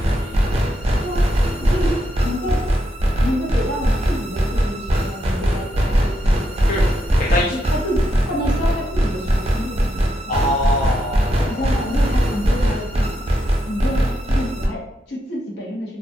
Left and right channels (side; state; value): both; normal; correlation 0.82